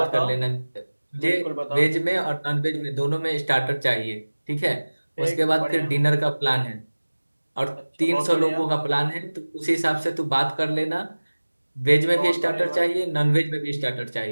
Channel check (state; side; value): inverted; both; correlation -1.00